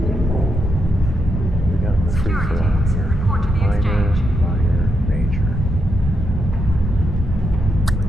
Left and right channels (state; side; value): normal; both; correlation 0.82